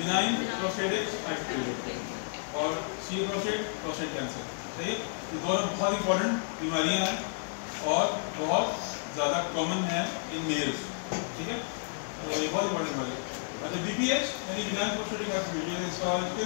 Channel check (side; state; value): right; silent; digital silence